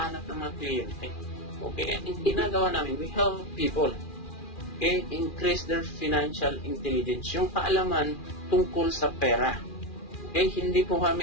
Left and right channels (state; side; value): late; right; 2.4 ms